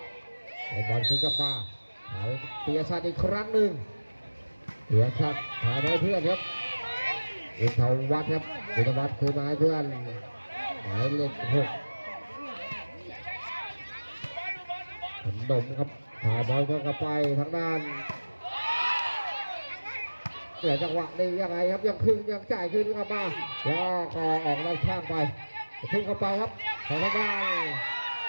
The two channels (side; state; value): both; inverted; correlation -1.00